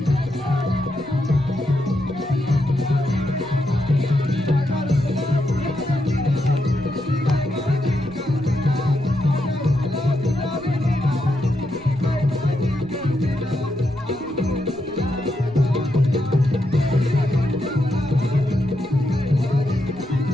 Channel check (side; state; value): right; noise; rumble, 22 dB below the sound